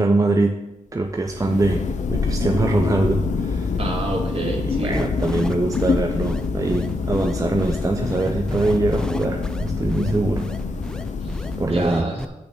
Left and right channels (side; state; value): both; normal; correlation 0.82